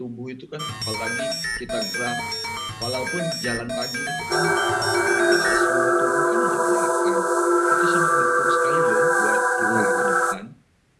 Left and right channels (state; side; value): identical; both; correlation 1.00